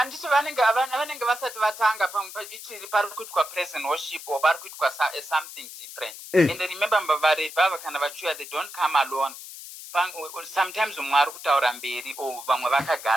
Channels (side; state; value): left; noise; hiss, 13 dB below the sound